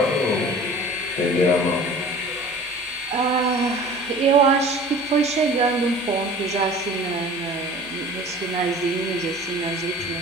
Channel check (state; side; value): normal; both; correlation 0.43